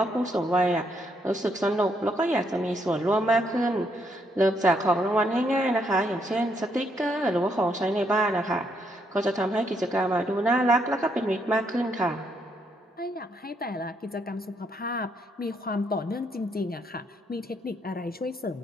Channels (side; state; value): both; normal; correlation 0.74